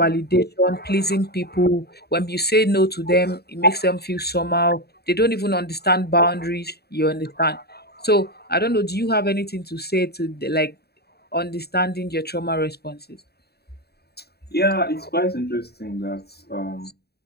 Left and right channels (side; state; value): right; late; 0.47 ms